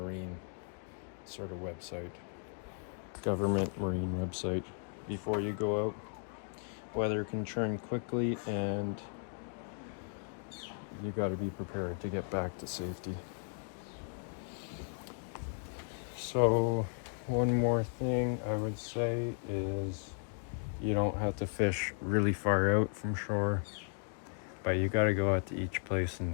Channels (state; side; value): silent; right; 54 dB below the other